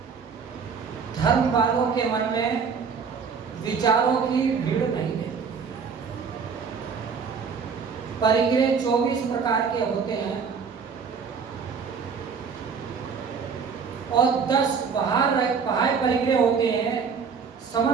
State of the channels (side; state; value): left; quieter; 5.9 dB